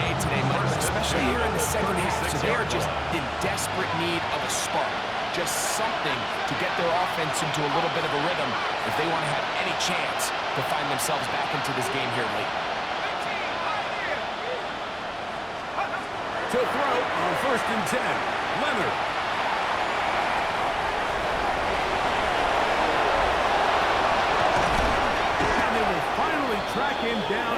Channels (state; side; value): identical; both; correlation 1.00